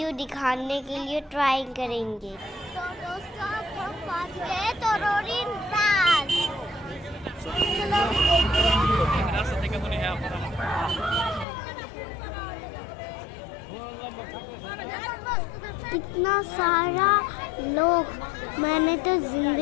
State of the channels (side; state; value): right; drops out; at 11.5 s